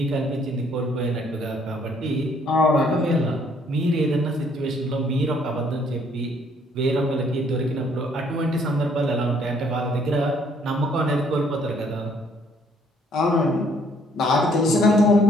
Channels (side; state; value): both; normal; correlation 0.64